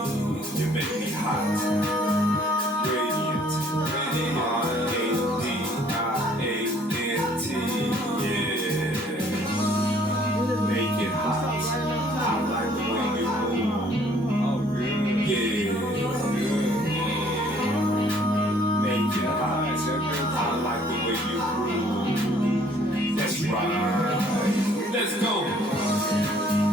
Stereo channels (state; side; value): normal; both; correlation 0.60